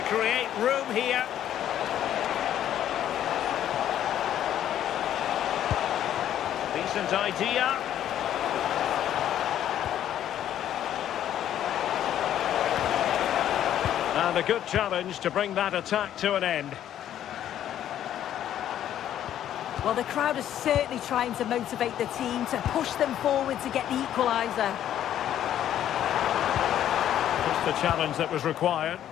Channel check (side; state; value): right; quieter; 11.1 dB